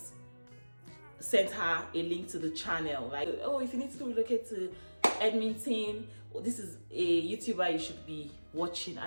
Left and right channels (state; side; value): inverted; both; correlation -1.00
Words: sent her a link to the channel. Like, oh, if you need to relocate to Edmonton, this is a YouTuber you should be watching.